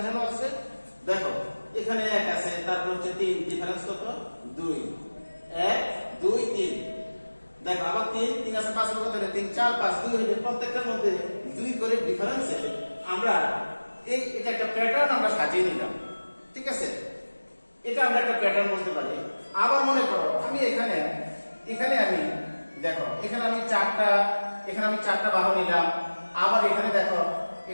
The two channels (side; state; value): both; inverted; correlation -1.00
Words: আছে, দেখো এখানে 1 আছে, তারপর হচ্ছে 3, ডিফারেন্স কত? 2, 1, 2, 3। দেখো আবার 3 আছে, 5 কত হলো? 3, 4, 5, 2 হলো। প্রত্যেকটার মধ্যে 2 করে ডিফারেন্সে আমরা এটা একটা প্যাটার্ন আমরা সাজিয়ে নিলাম। ঠিক আছে, এটা আমরা একটা প্যাটার্ন বলতে পারি। আবার মনে করো আমি এখানে আমি দেখো এখানে আমি 4টা বাহু নিলাম। আবার এখানে দেখো